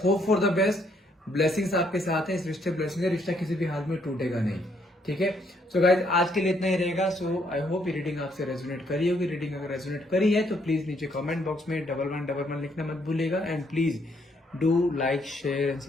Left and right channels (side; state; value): both; normal; correlation 0.70